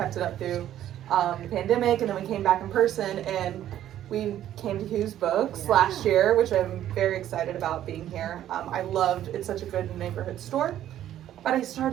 it up through the pandemic, and then we came back in person, and we came to Whose Books last year, which I'm very excited about being here. I loved, it's such a good neighborhood store. But I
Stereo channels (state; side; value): quieter; left; 11.9 dB